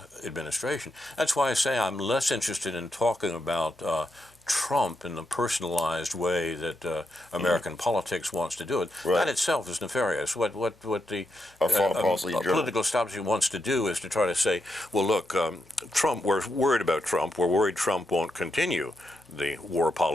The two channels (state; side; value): normal; both; correlation 0.83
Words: administration. That's why I say I'm less interested in talking about Trump in the personalized way that American politics wants to do it. Right. That itself is nefarious. What the political establishment wants to do is to try to say, well, look, Trump. We're worried about Trump. We're worried Trump won't continue the war